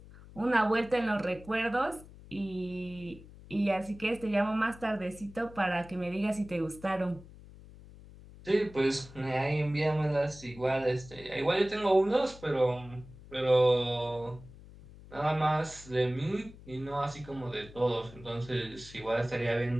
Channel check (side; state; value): left; noise; hum, 19 dB below the sound